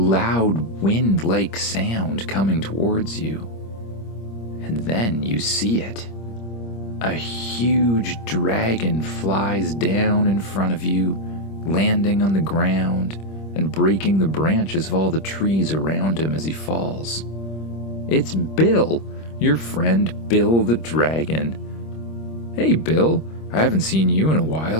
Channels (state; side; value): late; right; 26 ms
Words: wind-like sound coming towards you. And then you see it. A huge dragon flies down in front of you, landing on the ground and breaking the branches of all the trees around him as he falls. It's Bill, your friend Bill the dragon. Hey Bill, I haven't seen you in a